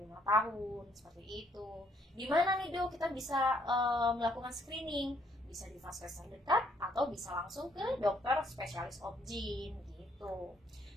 tahun, seperti itu. Di mana nih, dok, kita bisa melakukan screening? Bisa di vaskes terdekat atau bisa langsung ke dokter spesialis obgyn gitu.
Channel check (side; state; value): both; normal; correlation 0.67